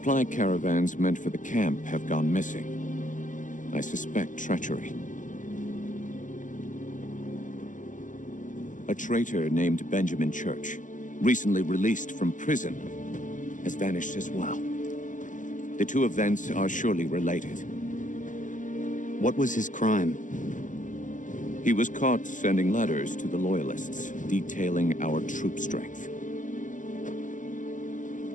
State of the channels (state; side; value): late; right; 0.37 ms